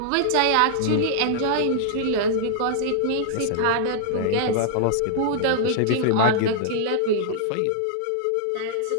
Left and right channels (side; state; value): both; different; correlation -0.01